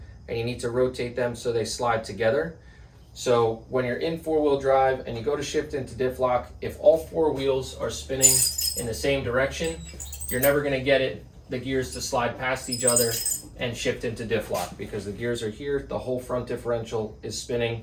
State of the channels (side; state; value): both; identical; correlation 1.00